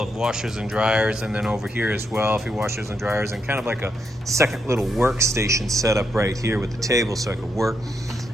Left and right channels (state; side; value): normal; both; correlation 0.80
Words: washers and dryers, and then over here as well, a few washers and dryers, and kind of like a second little workstation set up right here with the table so I could work.